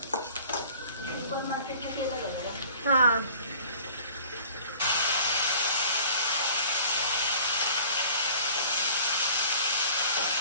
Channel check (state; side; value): inverted; both; correlation -0.48